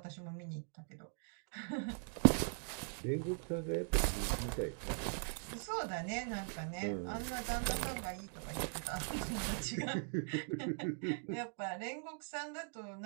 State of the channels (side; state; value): left; silent; 51 dB below the other